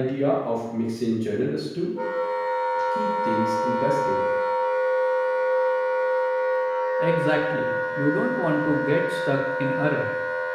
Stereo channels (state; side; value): identical; both; correlation 1.00